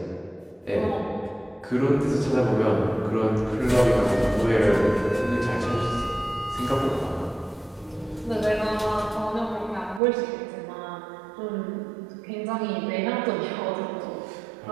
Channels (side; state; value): left; drops out; at 10.0 s